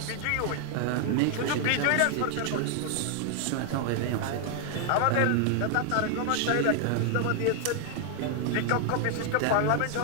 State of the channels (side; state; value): both; different; correlation 0.00